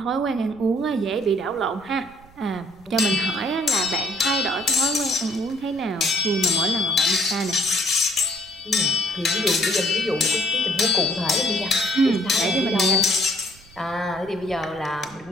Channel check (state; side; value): noise; right; rumble, 25 dB below the sound